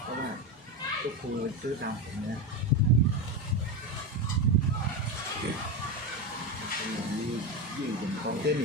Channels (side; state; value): both; normal; correlation 0.15